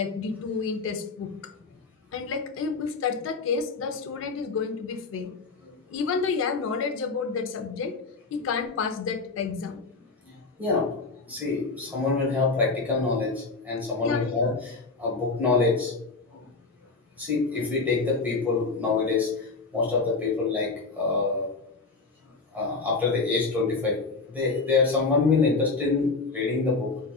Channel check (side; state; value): right; quieter; 4.0 dB